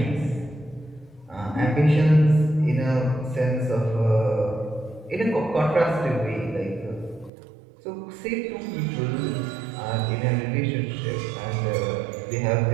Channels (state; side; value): drops out; left; at 7.3 s